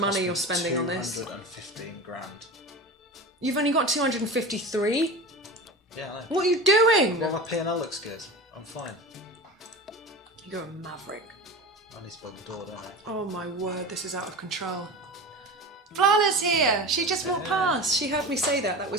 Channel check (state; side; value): normal; both; correlation 0.31